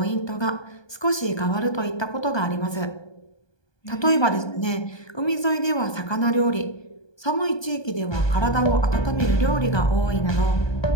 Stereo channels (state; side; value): late; right; 1.2 ms